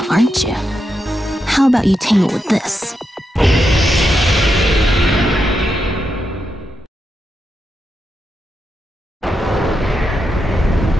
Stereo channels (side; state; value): both; normal; correlation 0.85